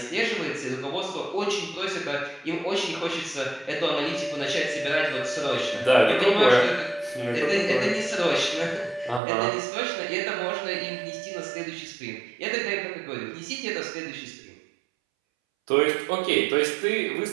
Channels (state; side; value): drops out; left; at 9.2 s